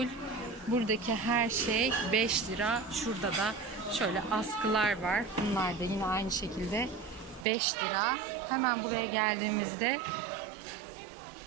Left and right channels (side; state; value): left; drops out; at 7.5 s